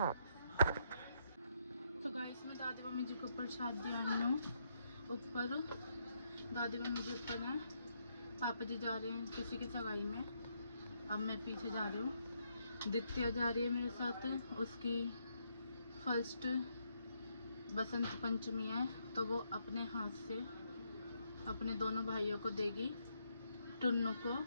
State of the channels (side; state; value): both; inverted; correlation -0.76